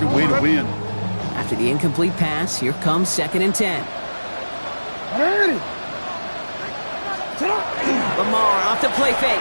a way to win. After the incomplete pass, here comes 2nd and 10. 180. Sit up. Lamar off to play fake.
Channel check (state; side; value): inverted; both; correlation -1.00